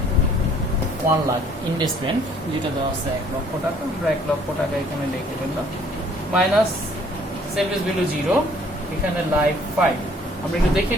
1 লাখ, ইনভেস্টমেন্ট যেটা দেওয়া আছে 1 লক্ষ টাকা, আমরা 1 লক্ষ টাকা এখানে লিখে ফেললাম, মাইনাস সেলভেজ ভ্যালু 0, এখানে লাইফ 5। আমরা একটু দেখে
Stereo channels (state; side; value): normal; both; correlation 0.59